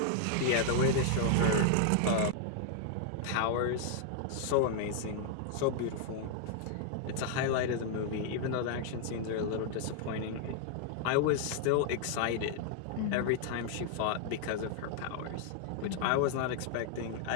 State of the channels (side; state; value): both; different; correlation -0.01